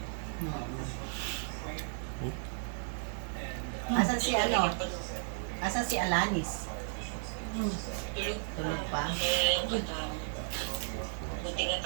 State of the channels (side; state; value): left; silent; digital silence